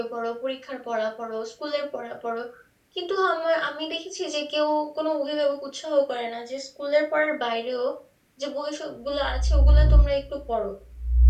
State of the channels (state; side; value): identical; both; correlation 1.00